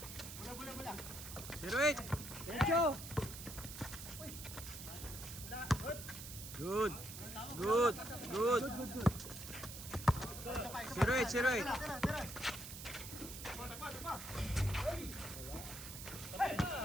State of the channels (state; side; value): noise; right; hiss, 10 dB below the sound